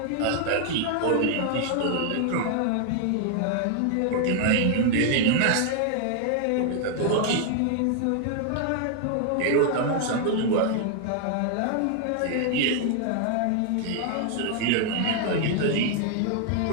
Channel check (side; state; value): both; different; correlation 0.00